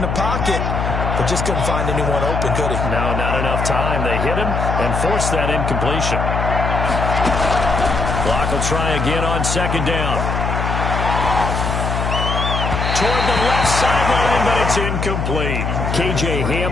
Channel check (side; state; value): left; noise; hum, 1 dB below the sound